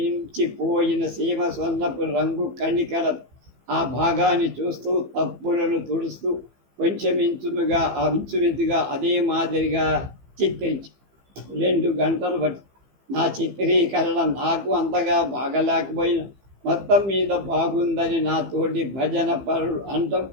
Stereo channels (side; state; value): left; late; 15 ms